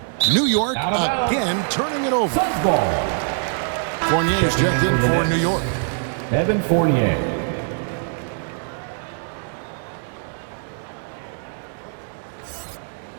New York again turning it over. Fournier's checked in for New York. Evan Fournier.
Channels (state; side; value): silent; left; 64 dB below the other